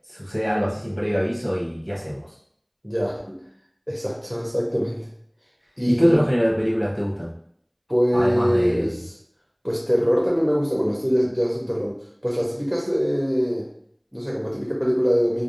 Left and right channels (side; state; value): both; identical; correlation 1.00